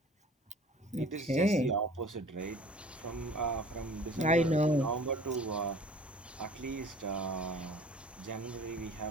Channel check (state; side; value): normal; both; correlation 0.47